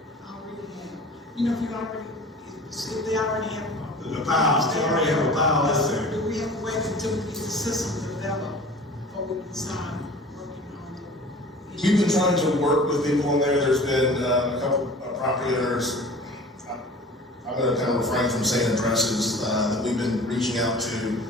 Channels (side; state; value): both; normal; correlation 0.42